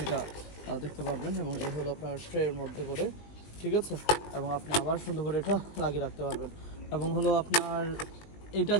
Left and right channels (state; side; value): late; right; 20 ms